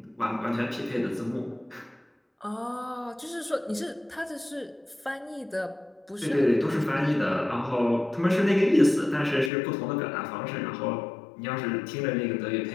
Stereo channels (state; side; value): drops out; right; at 9.5 s